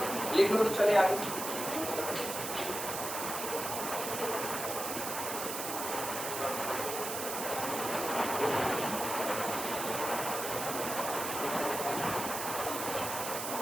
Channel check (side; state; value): right; noise; hiss, 4 dB below the sound